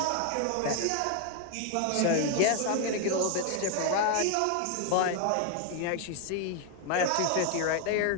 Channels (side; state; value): both; different; correlation 0.01